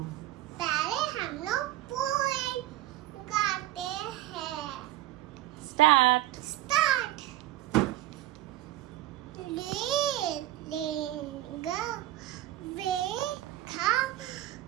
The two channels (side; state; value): left; quieter; 14.9 dB